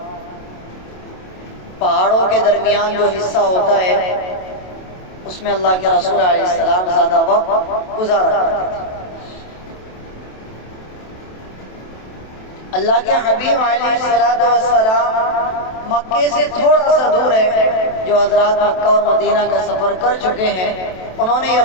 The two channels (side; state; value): right; late; 27 ms